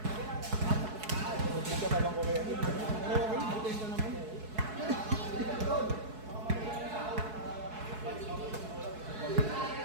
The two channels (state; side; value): late; left; 4.7 ms